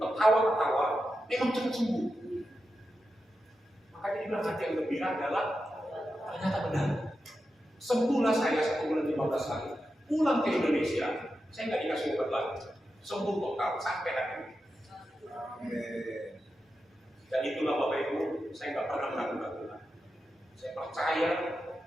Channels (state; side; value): normal; both; correlation 0.89